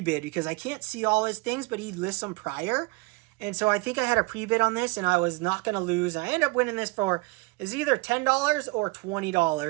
because I can't see all his things, but he lists them prior. And so I think I had a pre-bid on this, and I was not going to lose. I ended up winning this for, is either $10 or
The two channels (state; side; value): quieter; left; 25.7 dB